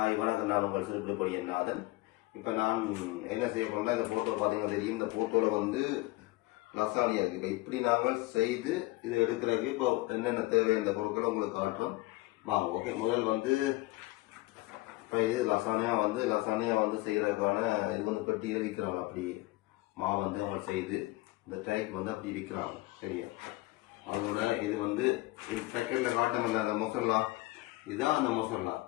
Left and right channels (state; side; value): quieter; right; 19.9 dB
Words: வணக்கம், நான் உங்கள் சிறுபிடி நாதன். இப்போ நான் என்ன செய்ய போறேன்னா, இந்த போட்டோ பார்த்தீங்கன்னா தெரியும். இந்த போட்டோவில் வந்து லசானியா இருக்கு. இப்போ இப்படி நாங்கள் செய்து இது எடுக்கிறதுக்கு இப்போ என்னென்ன தேவை இந்த பொருட்களை உங்களுக்கு காட்டுறோம் வாங்க. ஓகே, முதல் வந்து இப்போ இது லசானியா வந்து செய்கிறதுக்கான இது வந்து பெட்டியில் விற்கிறாங்க. அப்படி மாவு வந்து அவங்க செய்து இந்த டைக் வந்து அப்படி விற்கிறாங்க. சரியா? அதோட இது வந்து செகண்டில் காட்டமில்ல அந்த மொசல்லா, இதுதான் அந்த மொசல்லா.